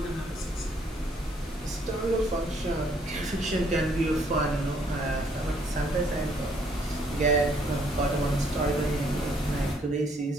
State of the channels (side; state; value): both; normal; correlation 0.66